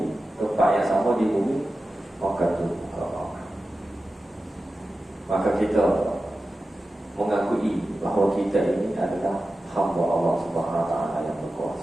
tempat yang sama di bumi, maka kita mengakui bahawa kita ini adalah hamba Allah Subhanahu wa taala yang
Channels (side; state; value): both; normal; correlation 0.94